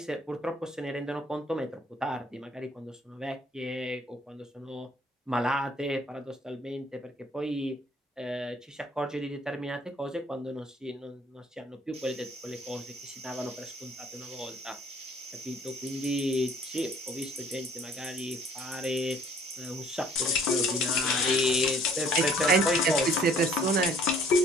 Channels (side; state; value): both; normal; correlation 0.57